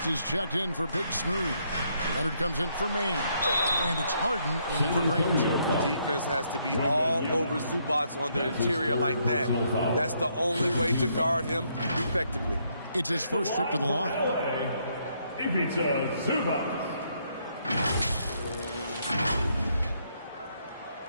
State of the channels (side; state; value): both; inverted; correlation -0.73